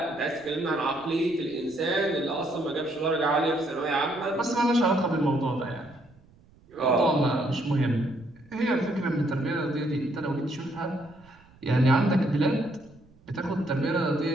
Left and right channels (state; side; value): noise; right; rumble, 28 dB below the sound